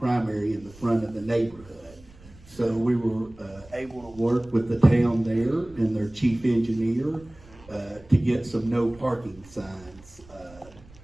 in the front of the neighborhood. So we were able to work with the town there and their chief engineer to get some no parking signs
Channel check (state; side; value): noise; right; rumble, 23 dB below the sound